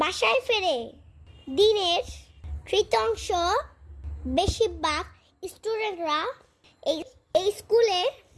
ফেরে। দিনের তৃতীয়াংশ বেশিরভাগ স্টুডেন্টরা এই স্কুলে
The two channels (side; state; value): both; identical; correlation 1.00